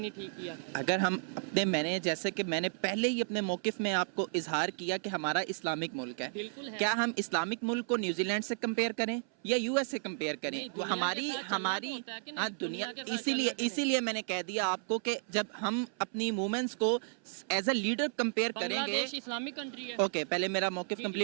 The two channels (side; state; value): left; silent; 56 dB below the other